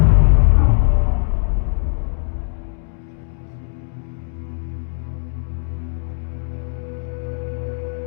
Execute one of those free men whose only sin was doubt. He was accused of witchcraft and they ordered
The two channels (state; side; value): silent; right; digital silence